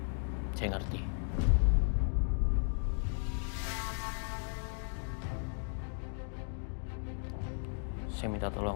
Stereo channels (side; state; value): right; silent; 54 dB below the other